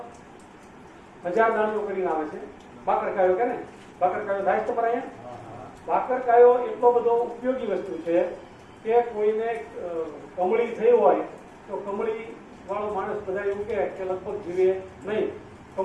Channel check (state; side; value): identical; both; correlation 1.00